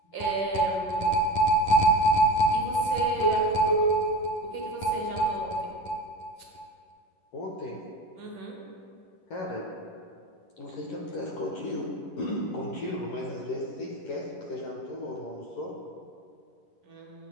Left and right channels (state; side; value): late; right; 11 ms